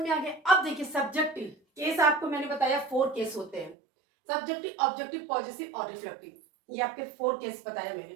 में आ गया। अब देखिए सब्जेक्टिव केस, आपको मैंने बताया 4 केस होते हैं, सब्जेक्टिव, ऑब्जेक्टिव, पॉजिटिव और रिफ्लेक्टिव। ये आपके 4 केस बताया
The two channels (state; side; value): drops out; left; at 3.8 s